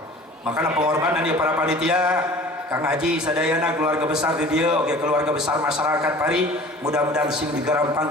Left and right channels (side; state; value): both; normal; correlation 0.45